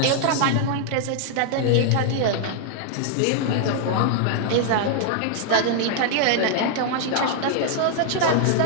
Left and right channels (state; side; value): different; both; correlation 0.00